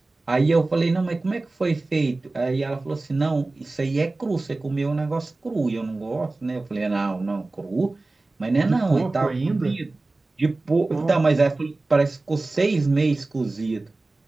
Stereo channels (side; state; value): left; quieter; 3.2 dB